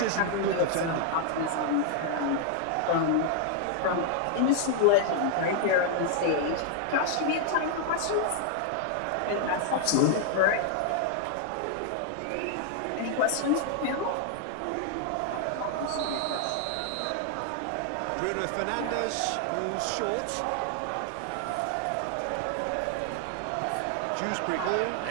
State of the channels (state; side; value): different; both; correlation 0.00